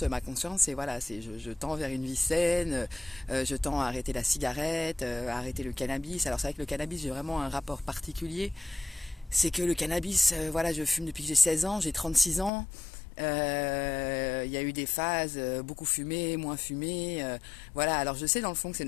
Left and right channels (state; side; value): drops out; right; at 12.5 s